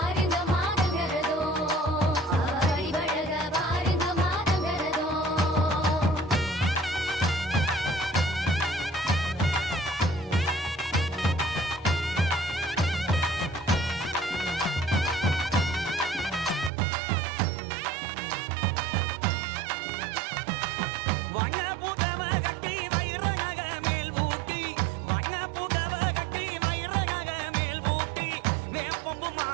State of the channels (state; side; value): drops out; left; at 16.7 s